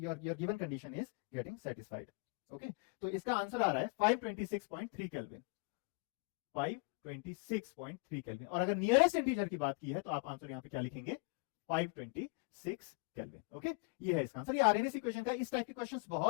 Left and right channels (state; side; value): quieter; right; 30.6 dB